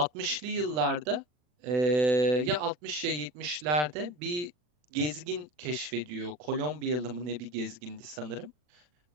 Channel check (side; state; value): left; late; 40 ms